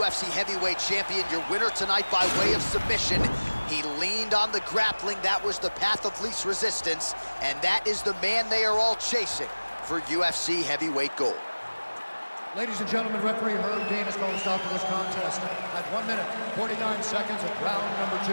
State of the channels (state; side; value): inverted; both; correlation -1.00